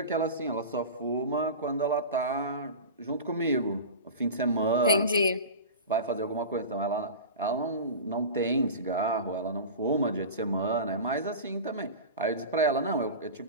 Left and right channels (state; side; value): inverted; both; correlation -0.30